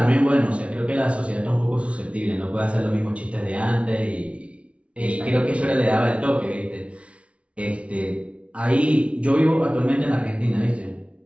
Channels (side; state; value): left; late; 0.062 ms